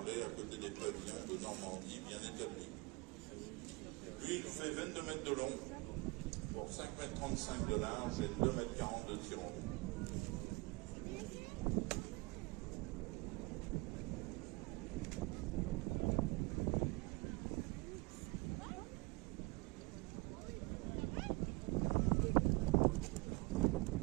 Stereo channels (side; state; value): left; quieter; 26.3 dB